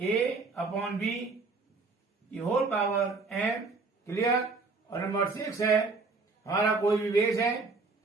ए अपॉन बी की होल पावर एम। क्लियर। और नंबर 6 है हमारा कोई भी बेस है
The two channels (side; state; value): left; quieter; 4.0 dB